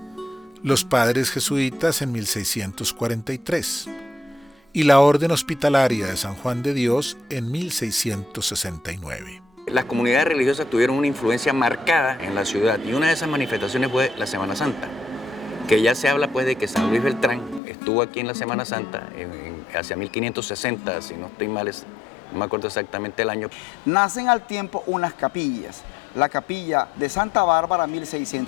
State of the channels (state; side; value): drops out; right; at 17.6 s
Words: los padres jesuitas en 1643 y la Orden Hospitalaria de San Juan de Dios en 1669. Las comunidades religiosas tuvieron una influencia marcada en la ciudad y una de esas manifestaciones fue la Semana Santa, que ya se habla pues de que San Luis Beltrán estuvo aquí en la Semana Santa hacia 1560, si no estoy mal, no me acuerdo exactamente el año. Nacen al tiempo unas capillas, la capilla de Santa Bárbara